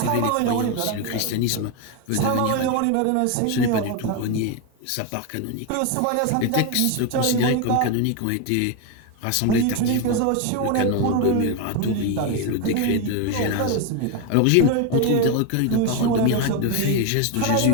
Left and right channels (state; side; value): different; both; correlation 0.02